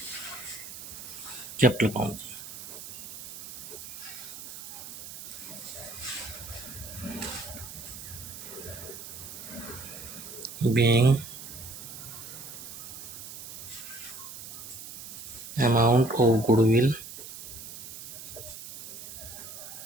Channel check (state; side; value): noise; right; hiss, 11 dB below the sound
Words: capital account जी। being amount of goodwill